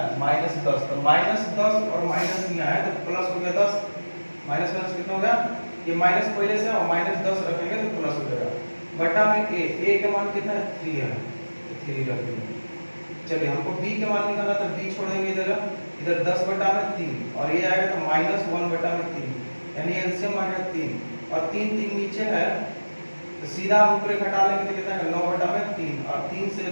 -10, तो -10 और माइनस यहाँ है तो प्लस हो गया 10, माइनस माइनस कितना हो गया, ये माइनस पहले से और -10 रखेंगे तो प्लस हो जाएगा, बटा में a के मान कितना है 3 है, 3 रख देंगे। चलिए हमको b के मान निकालना, तो b छोड़ देंगे इधर 10/3 और ये आएगा तो -1/3, यानी एलसीएम आ गया 3 और 3 3 नीचे है, तो सीधा ऊपर घटा लेंगे तो कितना है 9/3 और 3 से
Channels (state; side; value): inverted; both; correlation -1.00